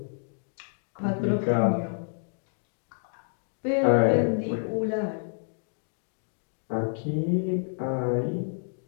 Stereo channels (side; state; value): right; silent; digital silence